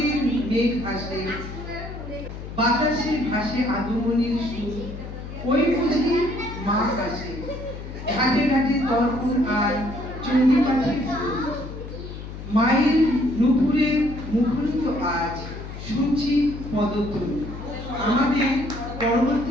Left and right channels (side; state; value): left; noise; hum, 10 dB below the sound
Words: মেঘ ভাসে, বাতাসে ভাসে আগমনীর সুর, ওই বুঝি মা কাছে, ঘাটে ঘাটে দর্পণ আর চণ্ডীপাঠে মায়ের নুপুরে মুখরিত আজ শুনছি পদতল। আমাদের